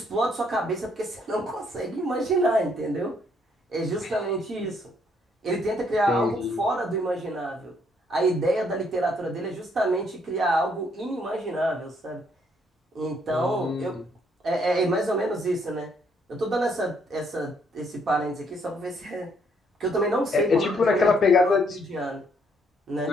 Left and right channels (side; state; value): both; normal; correlation 0.69